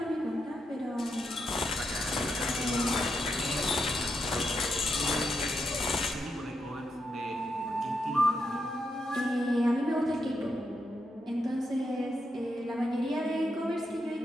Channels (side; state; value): both; normal; correlation 0.83